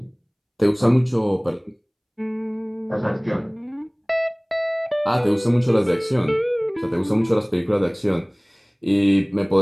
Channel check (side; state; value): both; identical; correlation 1.00